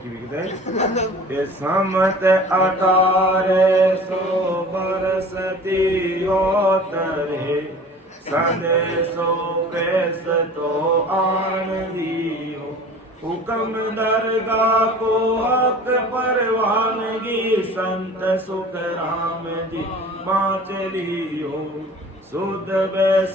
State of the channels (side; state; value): both; normal; correlation 0.43